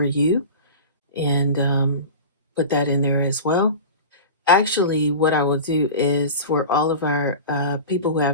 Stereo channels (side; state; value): both; inverted; correlation -0.32